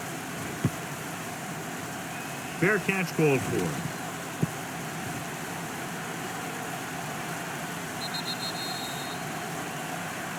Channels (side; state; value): both; identical; correlation 1.00